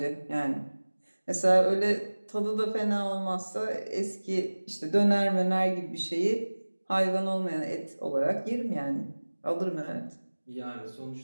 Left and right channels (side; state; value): both; inverted; correlation -1.00